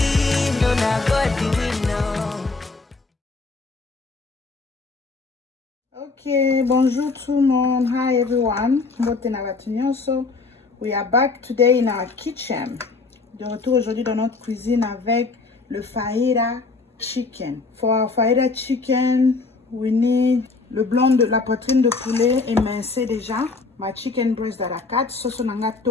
no not go do it, no. Okay, bonjour tout le monde. Hi everyone. So we are back today in our kitchen. De retour aujourd'hui dans notre cuisine avec le fajita chicken. For our fajita chicken, we need le blanc de la poitrine de poulet émincé déjà. My chicken breast à la 4, sauce nanga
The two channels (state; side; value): quieter; right; 4.0 dB